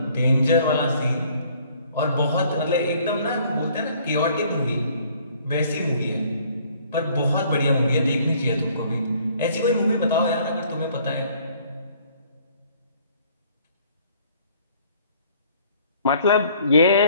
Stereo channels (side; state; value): both; inverted; correlation -0.59